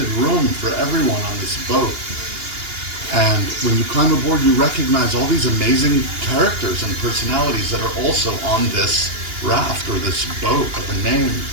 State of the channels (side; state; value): left; late; 2.8 ms